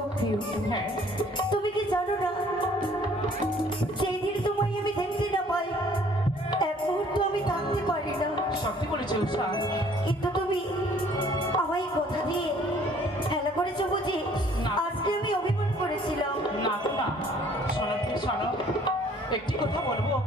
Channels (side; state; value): both; normal; correlation 0.58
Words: প্রিয়। হ্যাঁ তুমি কি জানো না, সেই দিন তোমায় আমি দেখতে না পাই এক মুহূর্ত আমি থাকতে পারি না। সত্যি বলেছে উষা। কিন্তু তুমি আমায় কথা দিয়ে খেলা করেছো বুঝি? আজকে আমি অভিমান করেছিলাম। না না শোনো তুমি শোনো, একটি কথা বলবো